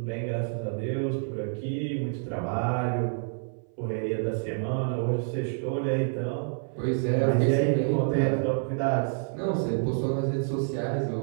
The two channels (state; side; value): silent; left; 58 dB below the other